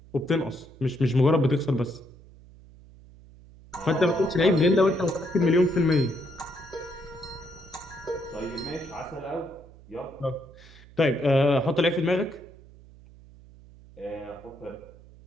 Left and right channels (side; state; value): right; noise; hum, 22 dB below the sound